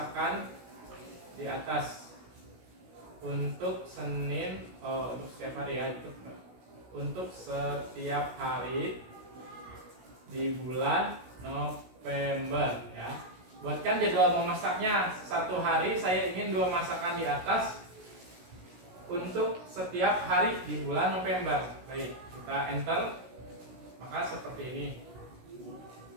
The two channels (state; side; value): late; left; 16 ms